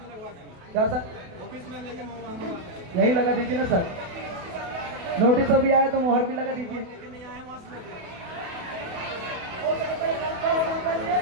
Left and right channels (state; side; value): late; left; 28 ms